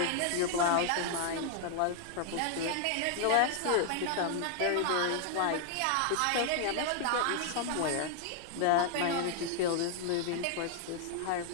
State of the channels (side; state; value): both; different; correlation 0.00